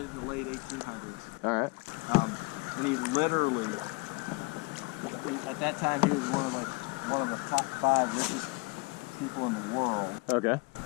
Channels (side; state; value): right; quieter; 28.0 dB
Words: in the late 1800s. All right. And he literally, at that time, he was one of the top 5 richest people in the world. Okay.